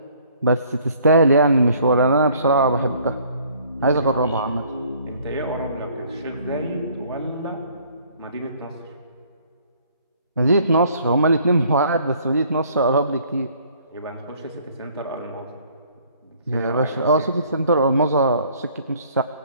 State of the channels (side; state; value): both; inverted; correlation -0.59